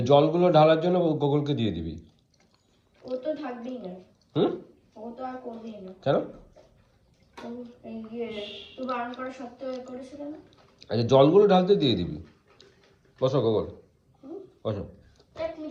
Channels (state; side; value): identical; both; correlation 1.00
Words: জলগুলো ঢালার জন্য গোগলকে দিয়ে দিবি। ও তো থাকবেই না। হুম? ও তো আর করবেই না। কেন? তুই বারণ করা সত্ত্বেও করেছিল না? আচ্ছা জলগুলো ঢালতে দিয়ে দিবি। বসো গোগল, বসো। এক